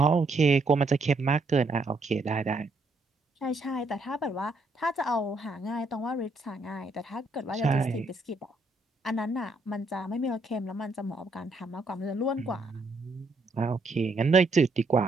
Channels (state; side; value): quieter; left; 3.0 dB